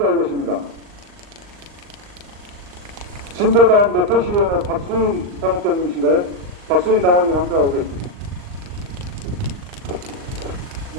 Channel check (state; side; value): late; left; 39 ms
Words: 계십니다. 진도당 매표시위원회 박수인 당협장님이신가요? 박수인 당원님 함께하고 계십니다.